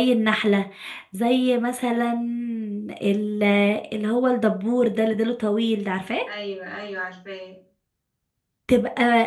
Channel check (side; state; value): both; identical; correlation 1.00